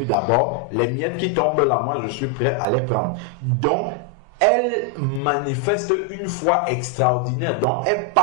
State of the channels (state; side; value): normal; both; correlation 0.01